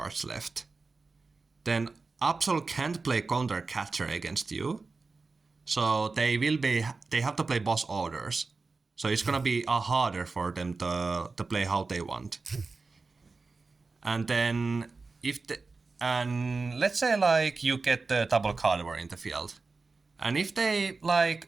left. Then Absol can't play counter catcher against you, so they have to play boss orders. So it's gonna be harder for them to play how they want. And then and let's say like you get the double Gardevoir in the field, and if they like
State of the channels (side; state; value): left; quieter; 4.0 dB